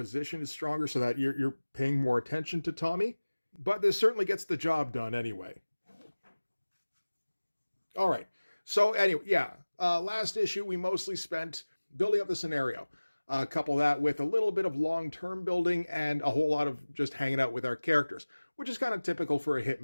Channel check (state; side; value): inverted; both; correlation -1.00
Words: is stronger, so that you're paying more attention to Tommy, but this certainly gets the job done anyway. All right. So anyway, yeah, last issue, we mostly spent building up the scenario. Couple that with a little bit of long-term building and a whole lot of just hanging out with our characters, which is kind of typical for a